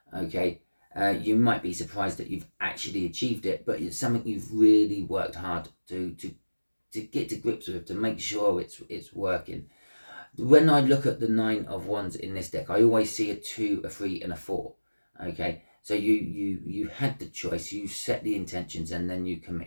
Okay, you might be surprised that you've actually achieved it, but it's something you've really worked hard to get to grips with, to make sure it's working. When I look at the Nine of Wands in this deck, I always see a 2, a 3, and a 4. Okay, so you had the choice, you set the intentions, and then you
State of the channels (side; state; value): both; inverted; correlation -1.00